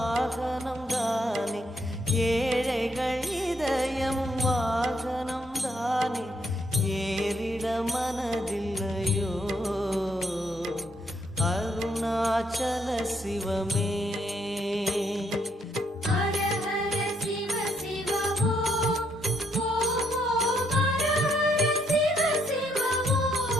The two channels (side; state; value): both; normal; correlation 0.73